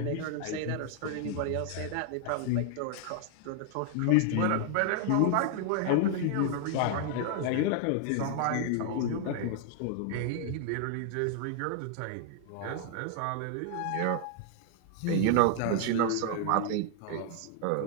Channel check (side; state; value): both; different; correlation 0.00